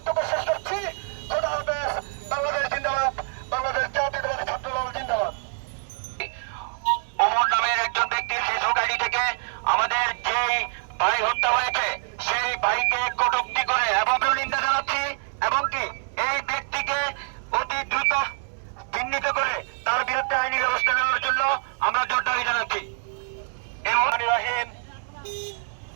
শেষ করছি। খোদা হাফেজ। বাংলাদেশ জিন্দাবাদ। বাংলাদেশ জাতীয়তাবাদী ছাত্রদল জিন্দাবাদ। ওমর নামের একজন ব্যক্তির ফেসবুক আইডি থেকে আমাদের যেই ভাই হত্যা হয়েছে সেই ভাইকে কটূক্তি করে এবং নিন্দা জানাচ্ছি, এবং কি এই ব্যক্তিকে অতি দ্রুত চিহ্নিত করে তার বিরুদ্ধে আইনি ব্যবস্থা নেওয়ার জন্য আমরা জোর দাবি জানাচ্ছি।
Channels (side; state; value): left; silent; digital silence